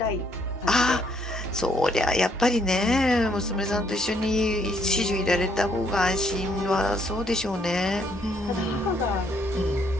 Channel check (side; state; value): both; normal; correlation 0.69